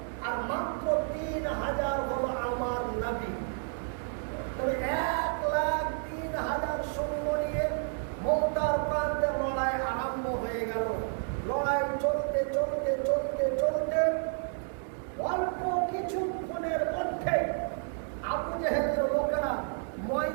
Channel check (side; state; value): left; silent; 57 dB below the other